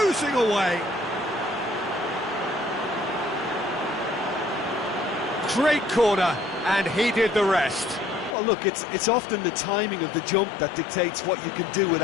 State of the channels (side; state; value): right; drops out; at 8.3 s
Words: away. Great corner, and he did the rest. Well, look, it's often the timing of the jump that dictates what you can do with